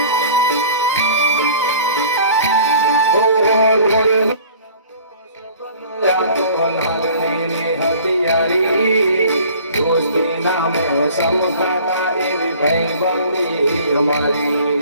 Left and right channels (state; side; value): inverted; both; correlation -0.47